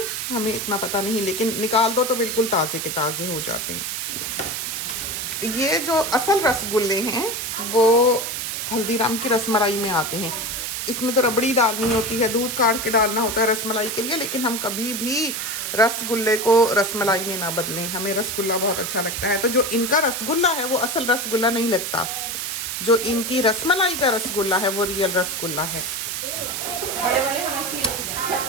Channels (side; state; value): right; noise; hiss, 3 dB below the sound